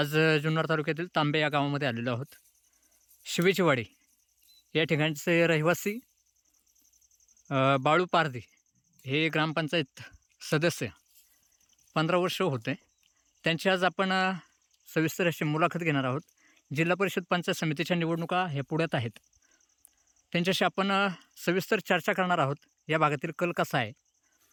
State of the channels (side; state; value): both; identical; correlation 1.00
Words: जुन्नर तालुक्यातील तांबे या गावामध्ये आलेलो आहोत. शिवेचीवाडी या ठिकाणचे रहिवासी बाळू पारधी हे ग्रामपंचायत सदस्य 15 वर्ष होते. त्यांची आज आपण सविस्तर अशी मुलाखत घेणार आहोत. जिल्हा परिषद पंचायत समितीच्या निवडणुका ह्या पुढ्यात आहेत. त्यांच्याशी आपण सविस्तर चर्चा करणार आहोत. या भागातील कल कसा आहे